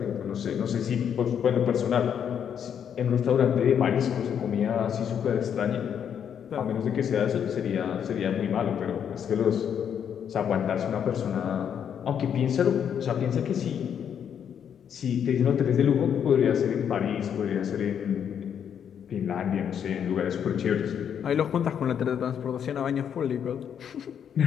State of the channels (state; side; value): quieter; right; 8.4 dB